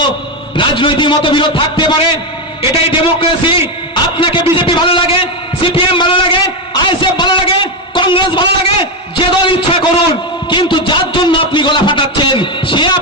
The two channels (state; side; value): normal; both; correlation 0.09